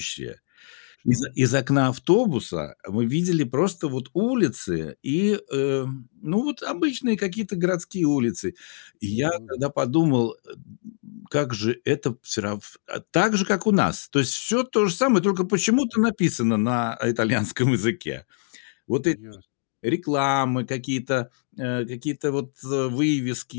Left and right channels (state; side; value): silent; right; digital silence